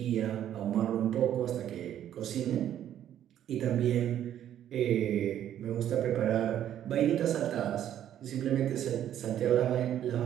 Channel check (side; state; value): left; quieter; 10.9 dB